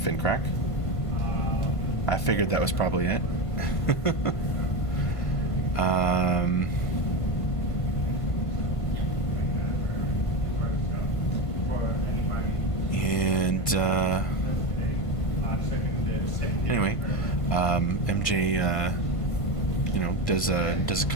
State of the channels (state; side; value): late; right; 1.5 ms